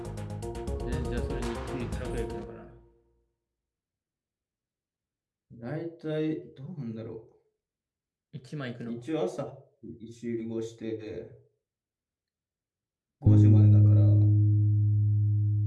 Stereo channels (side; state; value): both; identical; correlation 1.00